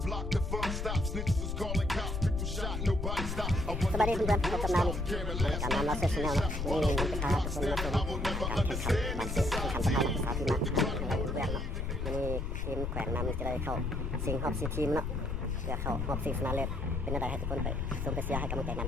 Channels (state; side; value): noise; left; rumble, 2 dB below the sound